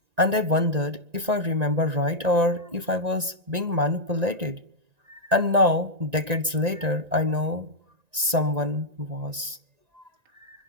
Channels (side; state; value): left; late; 1.9 ms